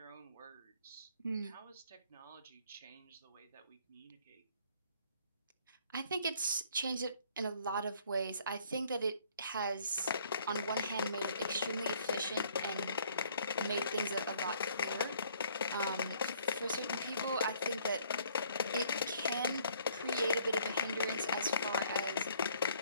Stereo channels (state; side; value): inverted; both; correlation -0.61